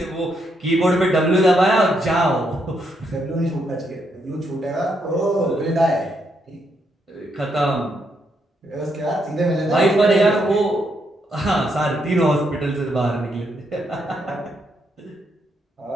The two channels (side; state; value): both; normal; correlation 0.77